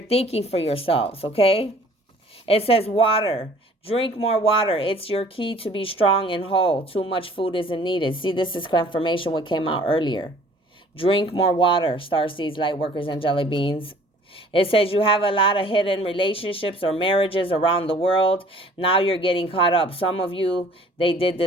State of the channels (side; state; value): both; normal; correlation 0.53